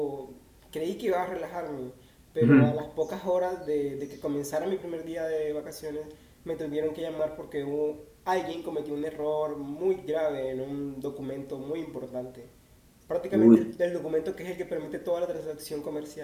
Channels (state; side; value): identical; both; correlation 1.00